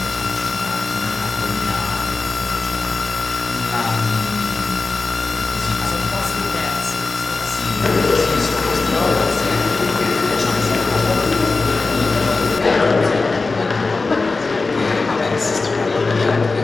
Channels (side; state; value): right; quieter; 3.8 dB